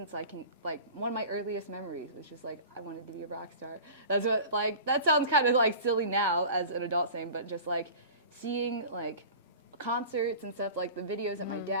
I can, like, one of my earliest memories was just, like, I wanted to be a rock star. That's what, like, that sounds kind of, like, silly now as an adult saying, but just, like, seeing, like, concerts and stuff, like the videos that my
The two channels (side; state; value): both; inverted; correlation -0.38